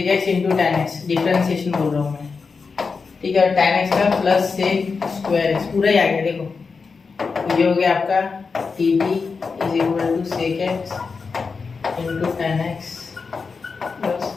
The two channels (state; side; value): quieter; right; 4.9 dB